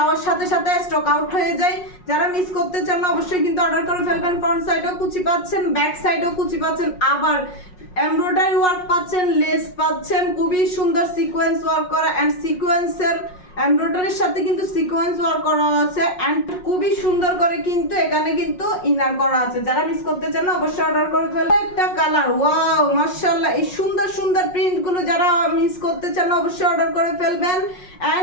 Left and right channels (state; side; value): late; right; 5.5 ms